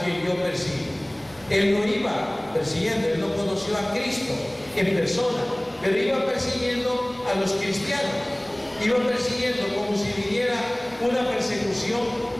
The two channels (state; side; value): noise; right; hum, 29 dB below the sound